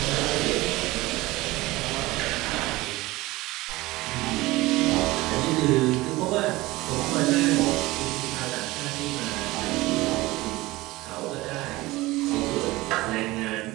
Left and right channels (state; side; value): quieter; left; 19.7 dB